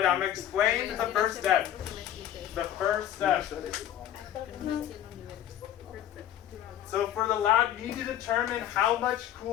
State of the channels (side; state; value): right; quieter; 11.5 dB